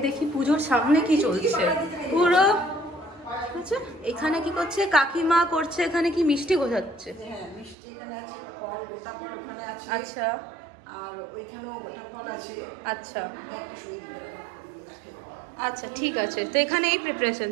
দেখি পুজোর সামনে কি চলছে পুরো। আচ্ছা এখানে কি করছে কাকিমা? করছে এখানে কি মিষ্টি গোছাচ্ছে? আচ্ছা আচ্ছা আচ্ছা ঠিক আছে। তো এখানে এই প্রিপারেশন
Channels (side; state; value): left; drops out; at 7.8 s